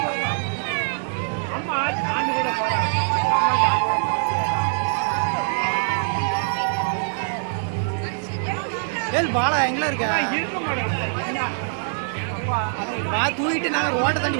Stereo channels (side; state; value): left; silent; 63 dB below the other